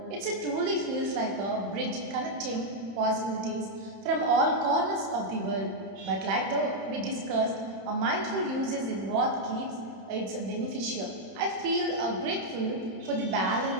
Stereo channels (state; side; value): late; left; 31 ms